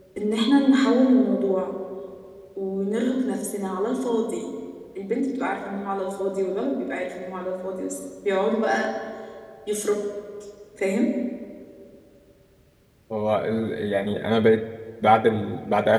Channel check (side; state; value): both; identical; correlation 1.00